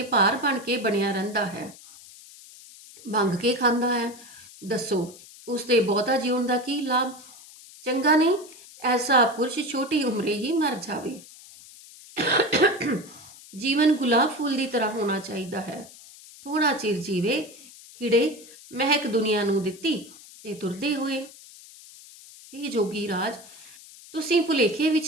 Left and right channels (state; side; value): noise; left; hiss, 20 dB below the sound